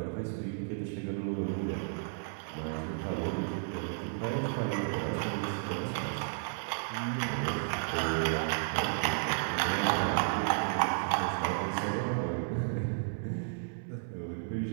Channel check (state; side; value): silent; left; 56 dB below the other